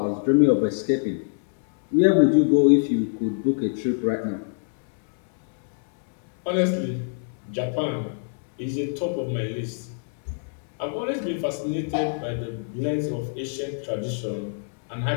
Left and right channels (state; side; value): silent; right; 62 dB below the other